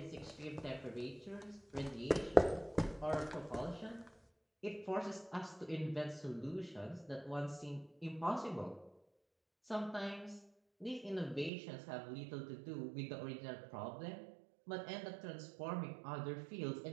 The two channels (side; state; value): left; drops out; at 11.5 s